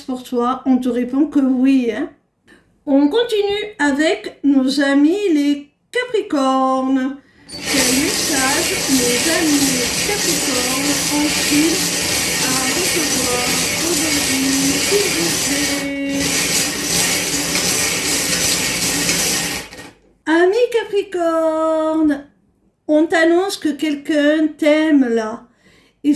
toi, on te répond que oui. Hein. On continue avec nos amis les Capricornes. Quel message nos amis les Capricornes ont-ils à recevoir aujourd'hui, s'il vous plaît? Amis Capricorne, on t'annonce que quelqu'un t'aime là. Et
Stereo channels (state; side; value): identical; both; correlation 1.00